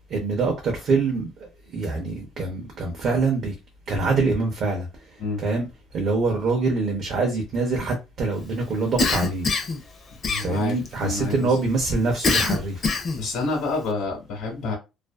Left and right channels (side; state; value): both; normal; correlation 0.61